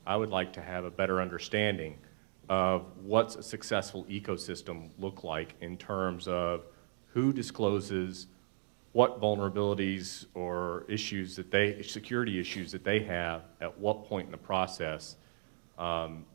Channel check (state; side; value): silent; left; digital silence